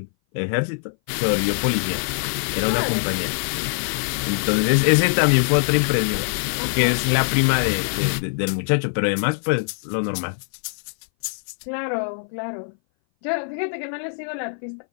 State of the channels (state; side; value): silent; right; 59 dB below the other